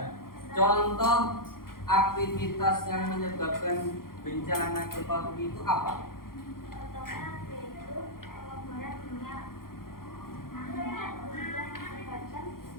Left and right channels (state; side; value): late; right; 0.92 ms